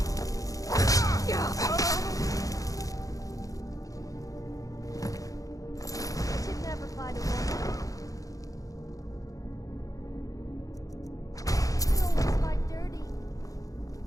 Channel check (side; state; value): right; late; 0.17 ms